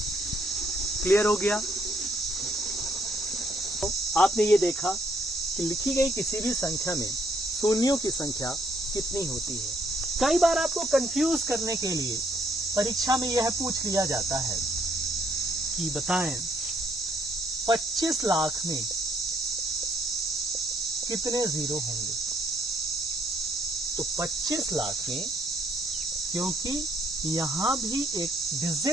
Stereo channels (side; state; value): both; normal; correlation 0.69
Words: क्लियर हो गया? तो आपने ये देखा कि लिखी गई किसी भी संख्या में शून्यों की संख्या कितनी होती है। कई बार आपको कंफ्यूज करने के लिए परीक्षा में यह पूछ लिया जाता है कि बताएं 25 लाख में कितने जीरो होंगे। तो 25 लाख में, क्योंकि यहां भी एक